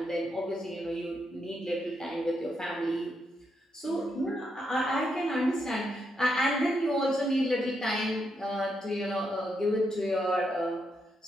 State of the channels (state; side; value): normal; both; correlation 0.81